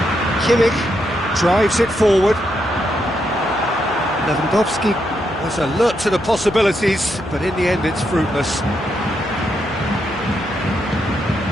Trungvk drives it forward. Lewandowski was alert to the possibilities, but in the end it's fruitless.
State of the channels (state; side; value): noise; left; hum, 18 dB below the sound